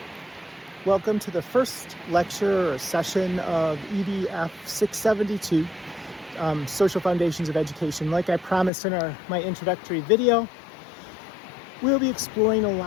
Welcome to the first lecture or session of EDF 672, Social Foundations of Education. Like I promised in my introductory video, we'll be exploring a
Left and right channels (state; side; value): drops out; right; at 8.7 s